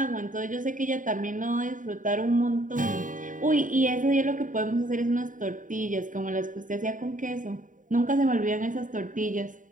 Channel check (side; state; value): left; late; 0.38 ms